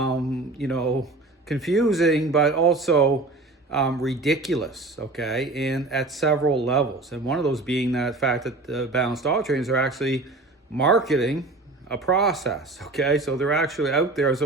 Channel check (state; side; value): quieter; left; 3.2 dB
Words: but also ridiculous, okay, and at several levels. And one of those being that fact that the balanced dog trainers are actually marketing a process, okay? So they're actually out there on